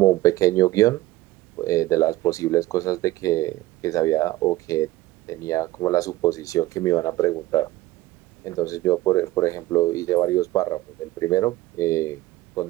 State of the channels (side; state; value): left; quieter; 17.3 dB